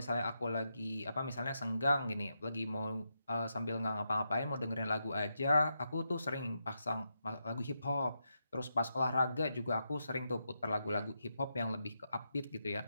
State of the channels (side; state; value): both; inverted; correlation -0.84